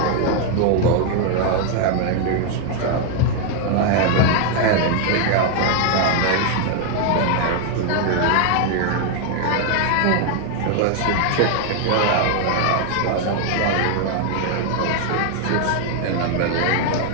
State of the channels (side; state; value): both; different; correlation 0.00